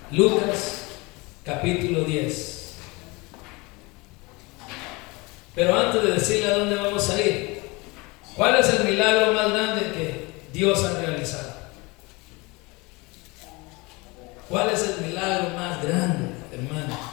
Lucas capítulo 10. Pero antes de decirle a dónde vamos a ir, ¿cuál es el milagro más grande que Dios ha realizado? ¿Cuál es el milagro más grande, hermano,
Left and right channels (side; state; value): right; quieter; 25.3 dB